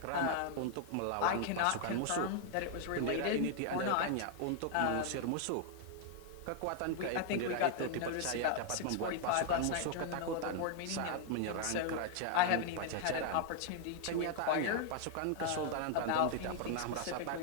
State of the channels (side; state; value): both; different; correlation 0.00